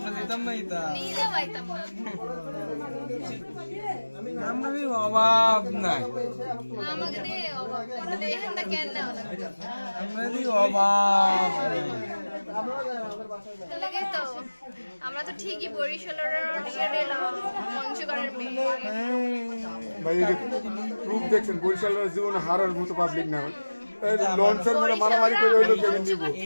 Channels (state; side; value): inverted; both; correlation -1.00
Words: যেতাম না ইতা, নিলেও আইতাম না, আমরা অভাব নাই, আমাকে দিয়ে দেখেন না কেন না আমরা অভাব লাগে তো আমরা তো ঠিকই বরিশালের নিয়ে নিলাম পঞ্চগড়ের মেয়ে। ভাই রূপ দেখছেন, বরিশালের জীবনে হারার মতো পাবলিক না, লঞ্চের মধ্যে মারামারি করে হইলো কেমন নিব।